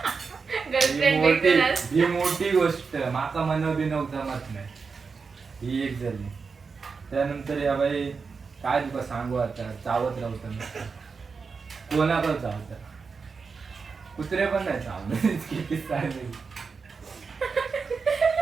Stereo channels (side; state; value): left; quieter; 5.1 dB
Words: गर्लफ्रेंड ही भेटूनच ही मोठी गोष्ट माका मनव बिनव जमत नाही, ही एक झाली. त्यानंतर या बाई काय तुका सांगू आता, चावत राहतं कोणाकडे चावत, कुत्रे पण नाही चावत. किती चालले